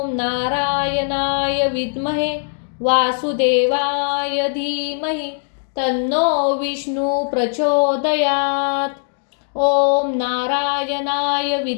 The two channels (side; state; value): right; silent; digital silence